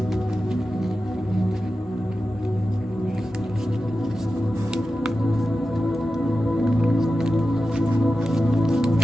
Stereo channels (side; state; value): both; normal; correlation 0.93